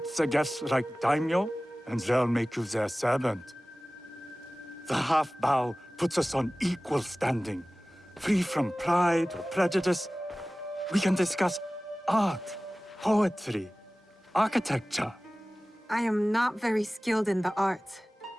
the guests like daimyo, and they'll make you their servant. The half bow puts us on equal standing, free from pride or prejudice. We can discuss art, poetry, architecture. I am not very skilled in the arts.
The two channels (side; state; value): both; normal; correlation 0.98